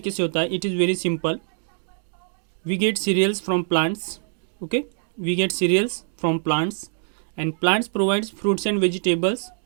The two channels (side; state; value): left; silent; digital silence